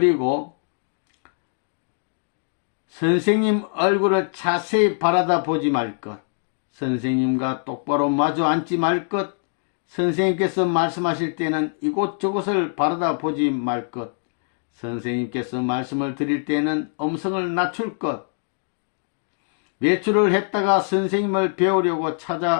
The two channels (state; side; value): silent; right; digital silence